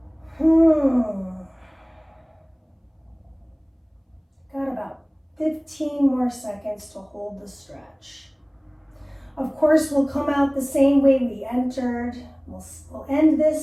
Got about 15 more seconds to hold the stretch. Of course, we'll come out the same way we entered. We'll end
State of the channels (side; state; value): both; identical; correlation 1.00